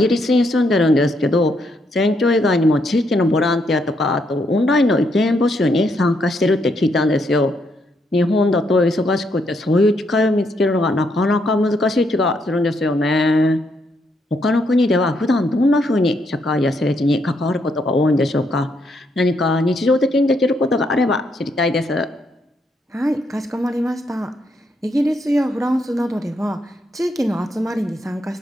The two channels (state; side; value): normal; both; correlation 0.76